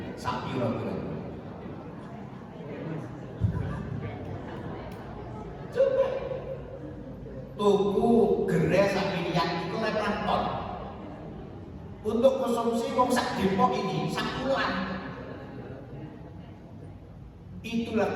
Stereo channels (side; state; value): both; identical; correlation 1.00